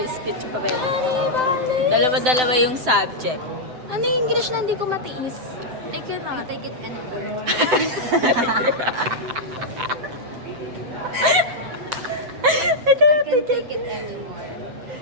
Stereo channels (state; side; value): late; left; 7.9 ms